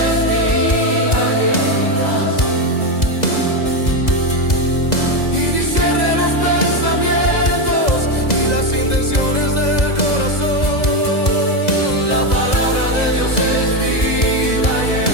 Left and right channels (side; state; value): right; late; 2.0 ms